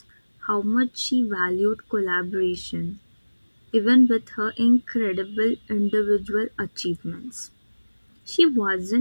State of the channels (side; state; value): both; inverted; correlation -1.00